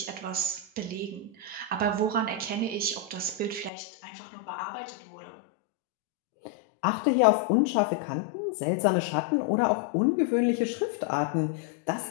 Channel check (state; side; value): drops out; right; at 3.7 s